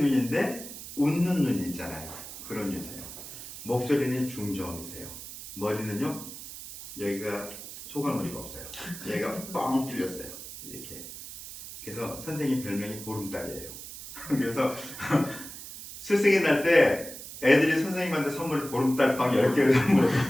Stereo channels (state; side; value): noise; right; hiss, 12 dB below the sound